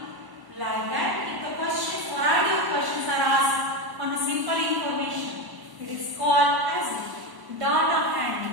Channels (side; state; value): left; late; 1.0 ms